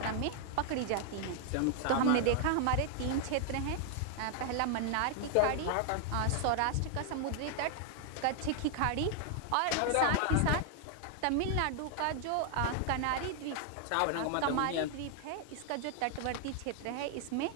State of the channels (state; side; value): different; both; correlation 0.00